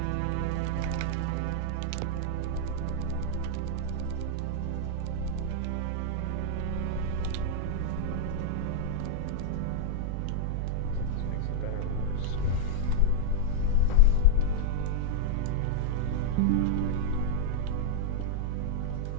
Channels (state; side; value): different; both; correlation -0.01